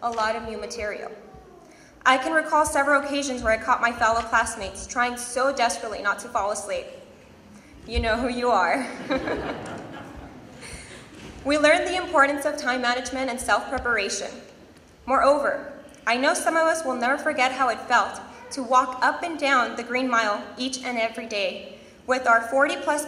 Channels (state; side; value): identical; both; correlation 1.00